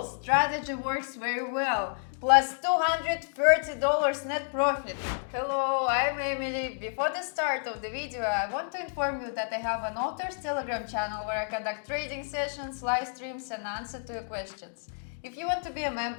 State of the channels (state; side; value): silent; right; digital silence